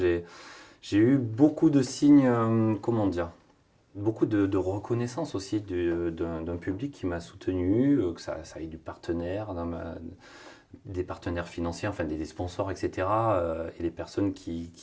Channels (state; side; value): identical; both; correlation 1.00